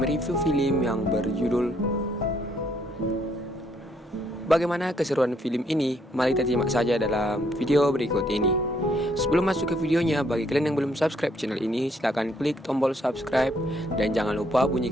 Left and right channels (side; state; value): both; normal; correlation 0.69